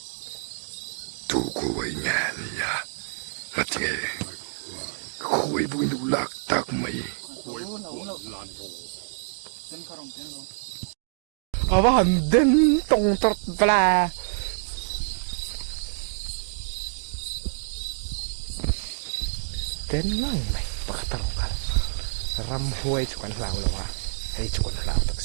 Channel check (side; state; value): left; silent; digital silence